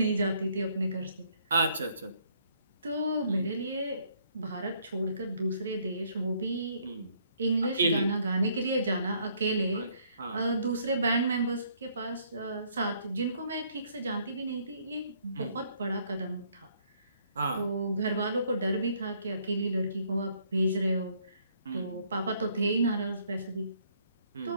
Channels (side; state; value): both; inverted; correlation -0.66